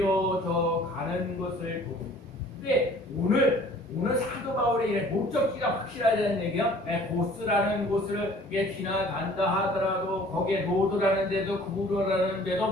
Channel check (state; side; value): normal; both; correlation 0.51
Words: 가는 것을 보고. 근데 오늘 사도 바울의 목적지가 확실하다는 얘기요. 고스라는 곳을 지나간다 하더라도 거기에 로드라는 데도 구브로라는